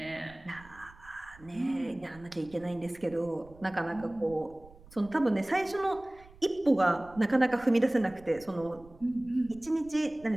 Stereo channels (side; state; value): right; noise; rumble, 23 dB below the sound